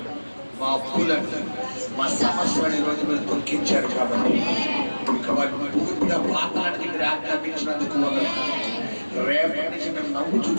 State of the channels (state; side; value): inverted; both; correlation -1.00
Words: మా అప్పులను, మా సమస్యలను ఈరోజు మీరు తొలగించారు కాబట్టి ఇక వాటిని పూర్తిగా పాత్రలకి మీరు ఆజ్ఞాపించినందుకు రేపటి నుంచి మేము నవ్వు